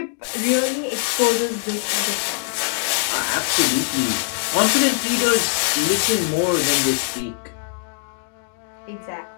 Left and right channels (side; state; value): right; silent; digital silence